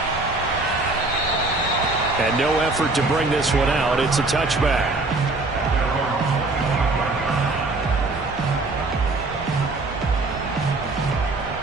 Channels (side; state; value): left; quieter; 3.2 dB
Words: And no effort to bring this one out. It's a touchback.